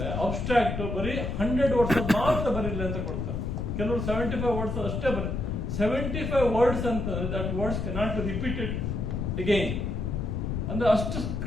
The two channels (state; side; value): noise; left; rumble, 2 dB below the sound